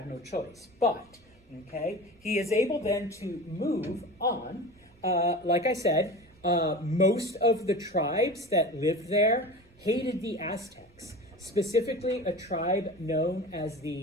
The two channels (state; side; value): normal; both; correlation 0.33